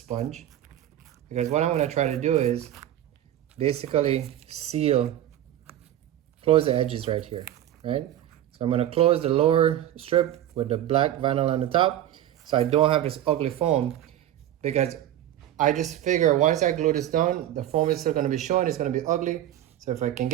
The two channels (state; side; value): quieter; left; 12.2 dB